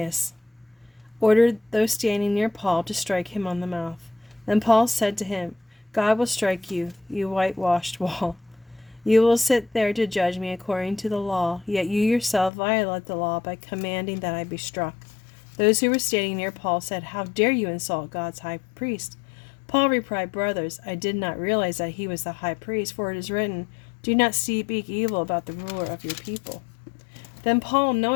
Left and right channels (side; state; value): right; drops out; at 12.5 s